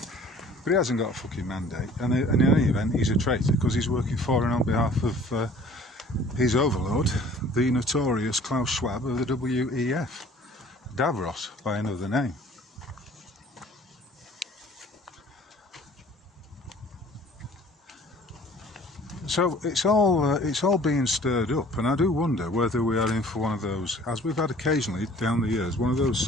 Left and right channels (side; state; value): both; normal; correlation 0.51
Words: but he hasn't got a fucking mandate. And in any event, he's a traitor because he's working for and on behalf of his overlord, the notorious Klaus Schwab of the WEF, Davros by another name. So it's all being stirred up, and I do wonder whether we are in for one of those, as we've had occasionally down the years, one of those